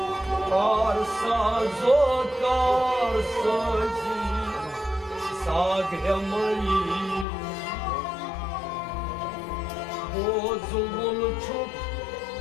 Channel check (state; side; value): drops out; right; at 7.2 s